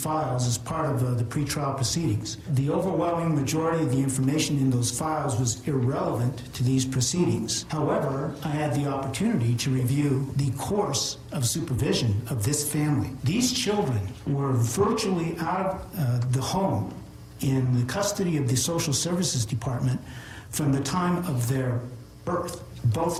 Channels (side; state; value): both; identical; correlation 1.00